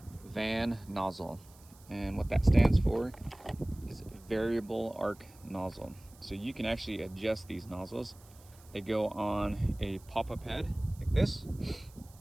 van nozzle. And what that stands for is variable arc nozzle. So you can actually adjust these nozzles. They go on a pop-up head like this,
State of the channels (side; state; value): right; noise; hiss, 25 dB below the sound